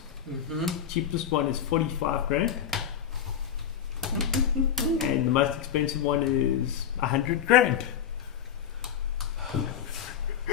Cheapest one is 45 grand. And the most expensive one is 100 grand.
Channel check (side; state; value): right; quieter; 8.7 dB